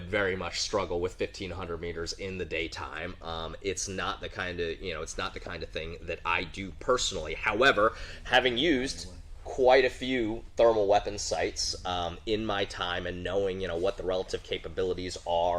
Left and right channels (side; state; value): both; identical; correlation 1.00